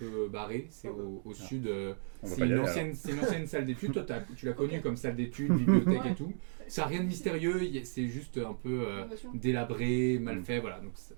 barré, c'est au sud, On va c'est pas y une aller, ancienne salle d'études, toi tu l'as connue comme salle d'études, bibliothèque et Ouais. tout, ça n'a rien de mystérieux, c'est juste un peu Innovation. délabré, mal fait, voilà, donc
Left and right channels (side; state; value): left; silent; digital silence